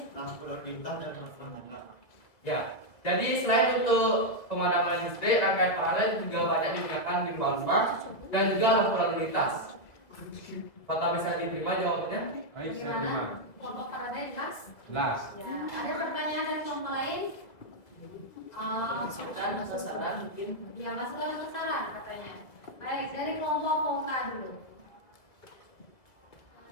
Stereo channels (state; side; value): late; right; 1.7 ms